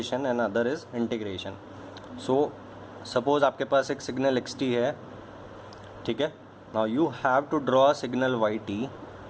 and other is integration. So suppose आपके पास एक सिग्नल xt है, ठीक है। Now you have to draw a signal yt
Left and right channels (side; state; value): both; identical; correlation 1.00